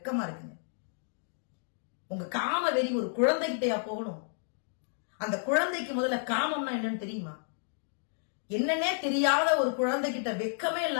இருக்குங்க. உங்க காம வெறி ஒரு குழந்தைகிட்டயா போகணும்? அந்த குழந்தைக்கு முதல்ல காமம்னா என்னன்னு தெரியுமா? என்னன்னே தெரியாத ஒரு குழந்தைகிட்ட வெக்கமே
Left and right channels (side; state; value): right; silent; digital silence